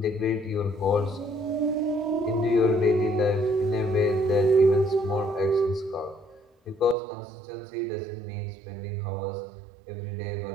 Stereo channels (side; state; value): left; drops out; at 7.0 s